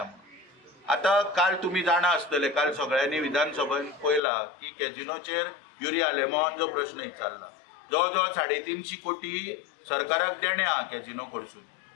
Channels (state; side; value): drops out; right; at 4.2 s